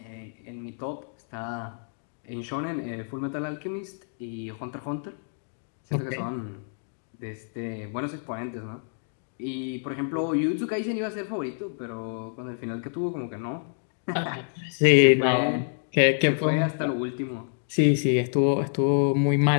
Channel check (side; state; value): right; silent; digital silence